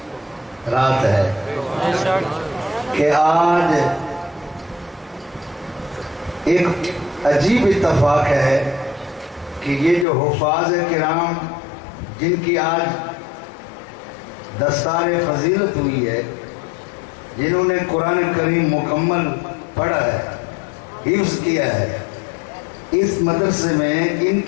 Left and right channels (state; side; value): drops out; right; at 10.1 s